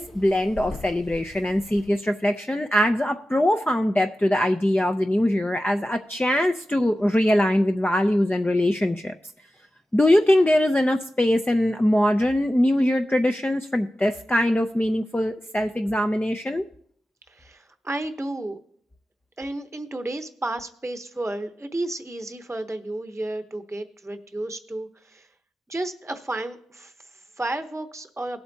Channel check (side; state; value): both; normal; correlation 0.94